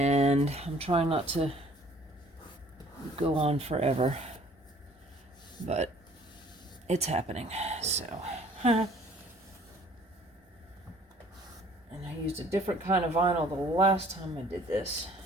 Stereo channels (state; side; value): normal; both; correlation 0.55